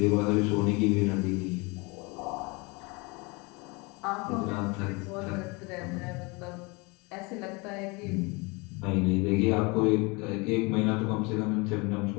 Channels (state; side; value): quieter; right; 27.7 dB